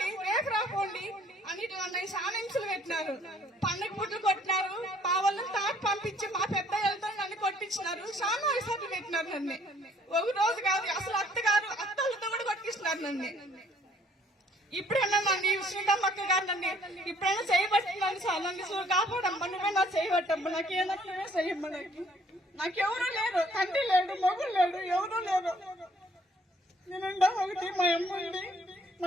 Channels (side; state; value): both; normal; correlation 0.62